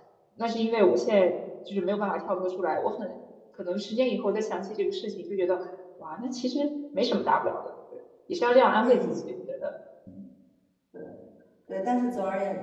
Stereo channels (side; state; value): both; identical; correlation 1.00